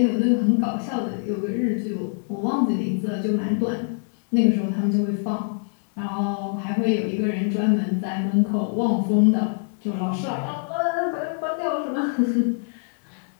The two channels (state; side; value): silent; right; digital silence